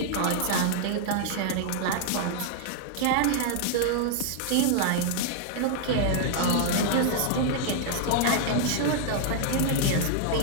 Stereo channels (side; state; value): both; different; correlation -0.01